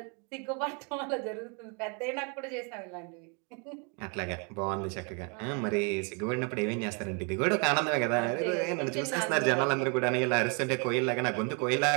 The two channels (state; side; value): quieter; left; 35.6 dB